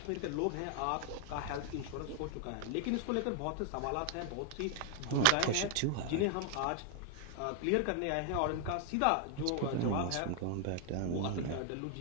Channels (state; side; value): different; both; correlation 0.00